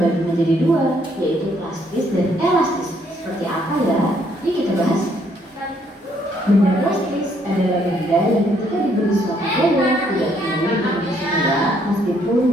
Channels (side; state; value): both; normal; correlation 0.69